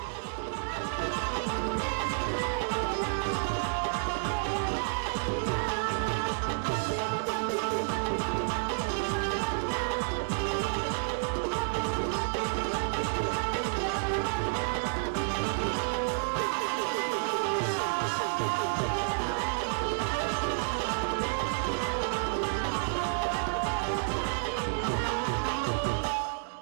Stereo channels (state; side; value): silent; left; 58 dB below the other